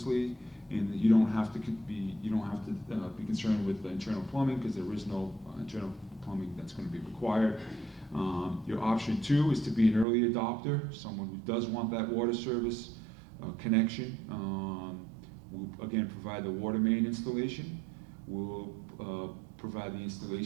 and you don't have to be concerned with the internal plumbing because there is no internal plumbing that's going to be required. Your option 2 is to be an early adopter, someone who does want that water service connection. We'll again provide the water main installation. We'll provide the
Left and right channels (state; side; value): drops out; left; at 10.1 s